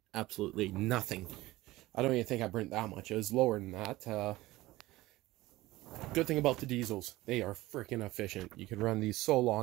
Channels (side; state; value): left; quieter; 18.2 dB